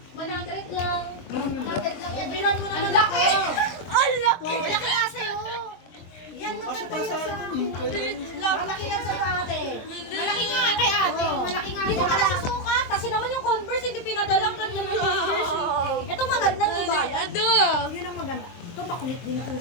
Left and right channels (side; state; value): right; late; 23 ms